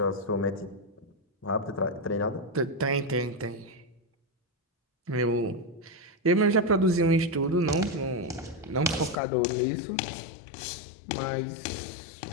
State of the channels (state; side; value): drops out; right; at 9.2 s